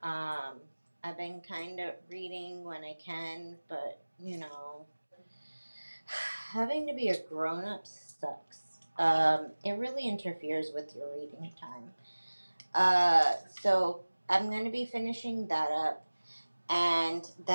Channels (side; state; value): both; inverted; correlation -1.00